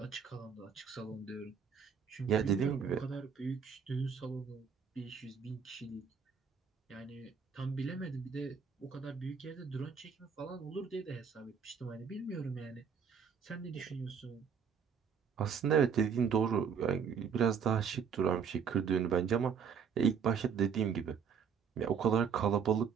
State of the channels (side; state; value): left; quieter; 6.8 dB